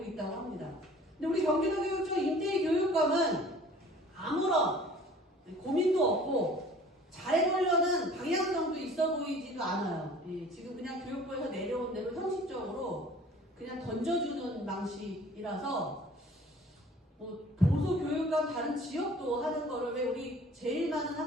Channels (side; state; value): both; normal; correlation 0.49